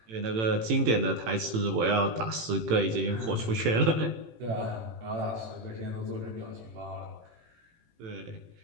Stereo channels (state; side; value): late; left; 18 ms